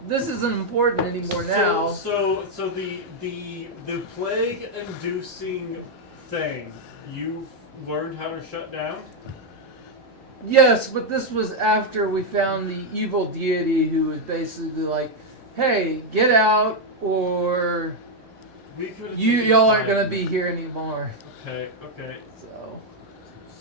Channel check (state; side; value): normal; both; correlation 0.00